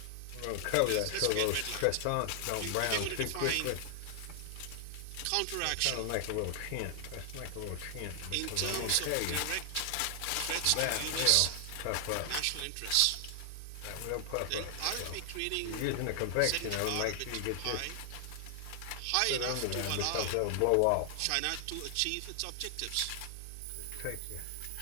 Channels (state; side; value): different; both; correlation 0.00